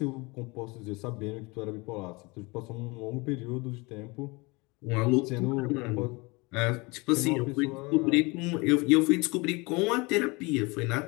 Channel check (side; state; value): right; quieter; 26.1 dB